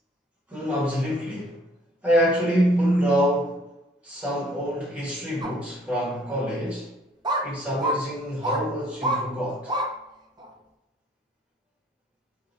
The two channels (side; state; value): both; normal; correlation 0.59